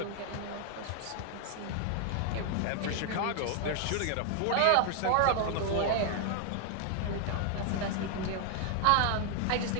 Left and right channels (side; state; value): both; different; correlation 0.00